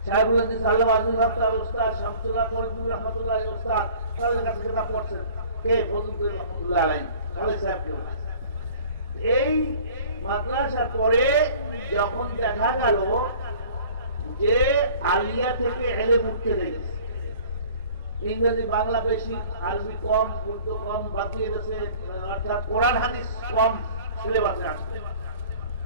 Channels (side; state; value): both; inverted; correlation -0.48